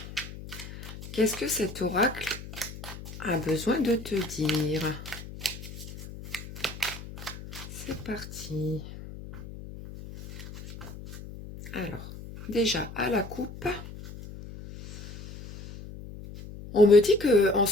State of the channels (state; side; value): noise; left; hum, 12 dB below the sound